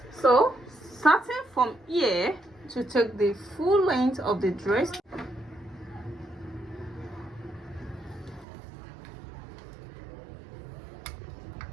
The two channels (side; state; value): left; drops out; at 8.5 s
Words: So starting from here to take the full length of the dress,